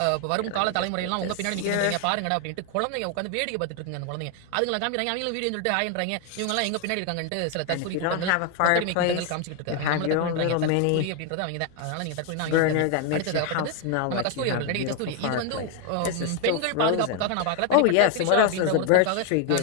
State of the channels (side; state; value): both; different; correlation 0.01